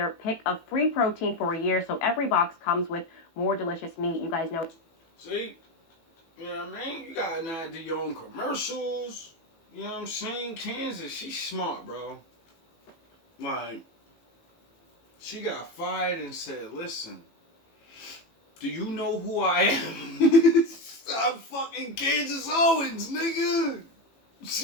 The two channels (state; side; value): late; right; 18 ms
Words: pick of free protein for a year, so every box comes with more delicious meat. You guys know. See? You know what I mean? You got an idea your own commercials. You know what I'm saying? Kansas, she's smart, bro. Like, she got fired and said, listen, do you know who I am? I'm fucking Candace Owens, nigga.